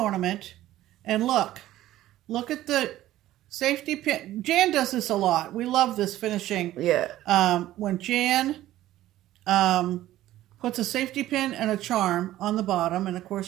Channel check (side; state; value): left; quieter; 14.5 dB